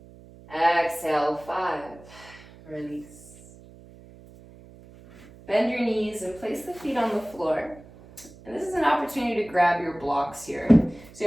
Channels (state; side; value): noise; right; hum, 21 dB below the sound